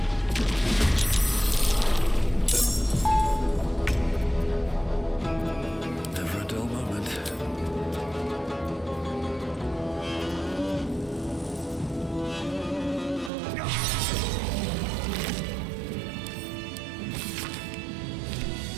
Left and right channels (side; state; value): left; drops out; at 13.3 s